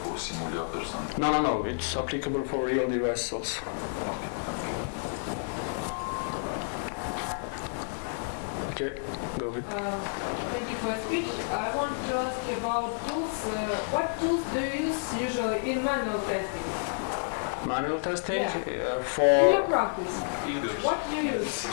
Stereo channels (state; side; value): silent; right; digital silence